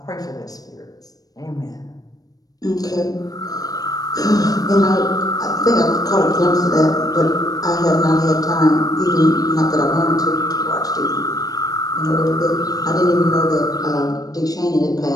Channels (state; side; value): late; right; 0.18 ms